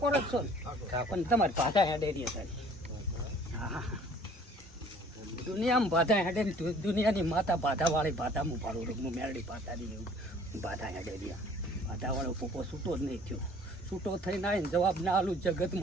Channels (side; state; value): both; normal; correlation 0.53